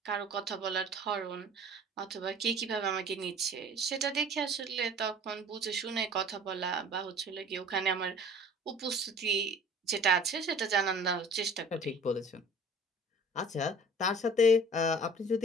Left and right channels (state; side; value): normal; both; correlation 0.46